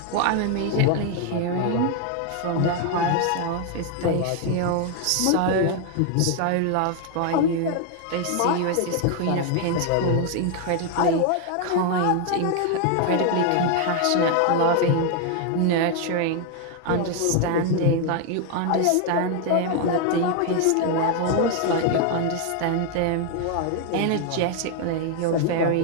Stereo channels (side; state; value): both; different; correlation 0.00